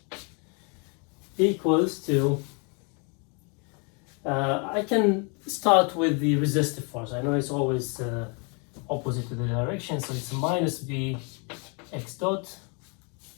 equals to, I can start with the resistive force. I know it's always opposite to the direction, so it's minus b x dot.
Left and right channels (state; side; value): quieter; right; 35.3 dB